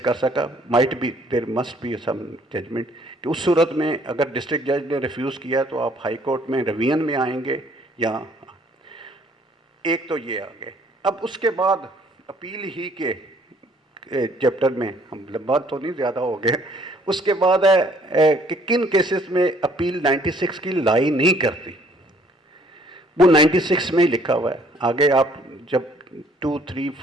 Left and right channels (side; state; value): both; normal; correlation 0.61